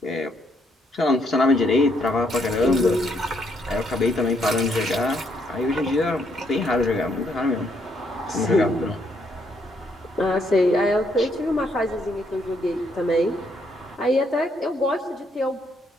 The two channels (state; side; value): normal; both; correlation 0.73